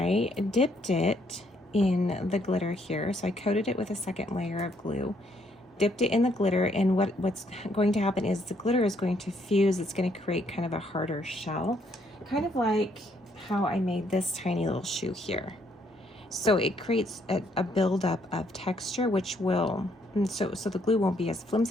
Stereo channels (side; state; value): both; normal; correlation 0.70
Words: dipped it in the glitter here. So I coated it with a second layer of glue, dipped it in the glitter, and what's going to happen is the glitter is going to fuse. It's going to create kind of a harder shell, kind of like how I made this tiny little shoe here. So it creates a buildup of texture, which will, so the glue won't be as